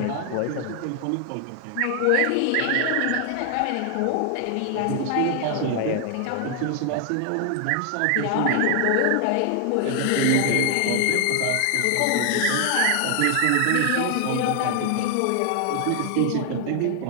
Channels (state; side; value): different; both; correlation 0.00